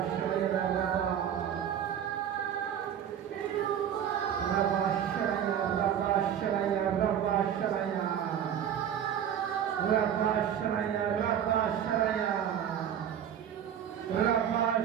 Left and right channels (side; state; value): left; quieter; 9.3 dB